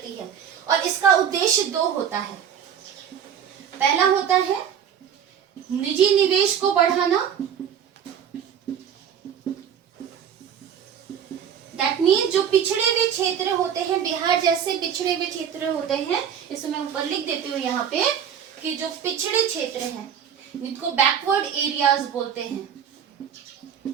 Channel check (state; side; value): quieter; left; 8.5 dB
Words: है। और इसका उद्देश्य दो होता है। पहला होता है निजी निवेश को बढ़ाना, दैट मीन्स जो पिछड़े हुए क्षेत्र होते हैं, बिहार जैसे पिछड़े हुए क्षेत्र होते हैं, इसमें मैं ऊपर लिख देती हूँ यहाँ पे कि जो पिछड़े क्षेत्र हैं इनको बैकवर्ड एरियाज बोलते हैं।